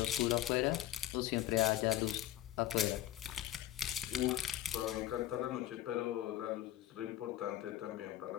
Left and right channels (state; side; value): quieter; right; 13.7 dB